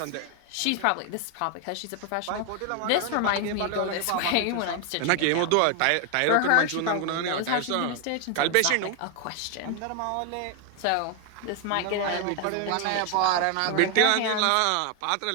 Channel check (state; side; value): different; both; correlation 0.01